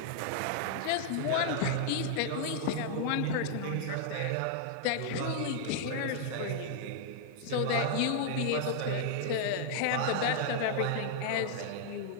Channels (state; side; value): different; both; correlation -0.01